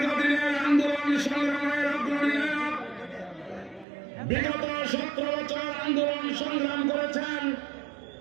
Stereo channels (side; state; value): left; drops out; at 3.9 s